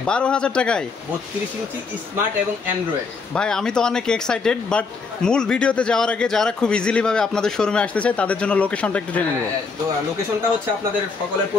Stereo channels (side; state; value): right; quieter; 4.6 dB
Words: 12,000 টাকায় 32 ইঞ্চি স্মার্ট এবং অ্যান্ড্রয়েড। ভাই আমি তো অনেক এক্সাইটেড, বাট মূল ভিডিওতে যাওয়ার আগে যারা খুব ইজিলি ভাবে আপনাদের শোরুমে আসতে চায় তাদের জন্য লোকেশনটা একটু জেনে নেব। লোকেশনটা হচ্ছে আপনাদের সকলের